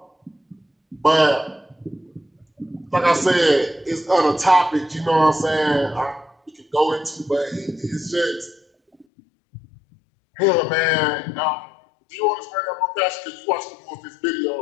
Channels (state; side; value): drops out; right; at 9.1 s